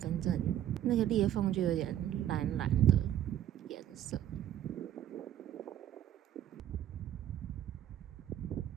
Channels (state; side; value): quieter; left; 11.5 dB